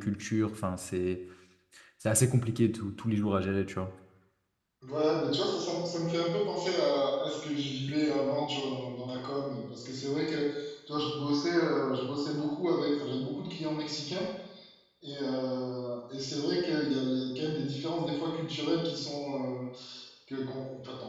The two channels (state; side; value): identical; both; correlation 1.00